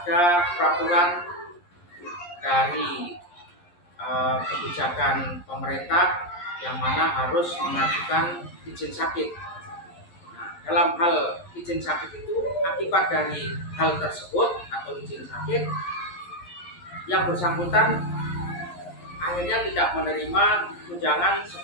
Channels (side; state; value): right; late; 11 ms